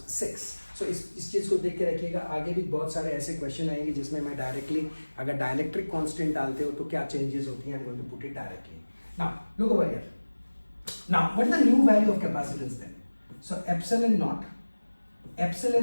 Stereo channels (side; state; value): both; inverted; correlation -1.00